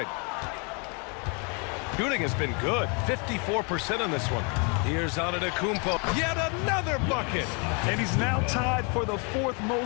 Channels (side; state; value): right; quieter; 34.6 dB